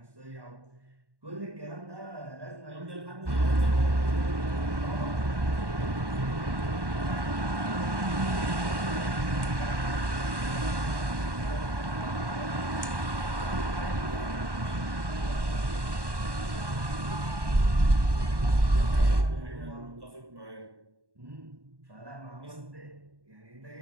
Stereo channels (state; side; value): late; left; 1.1 ms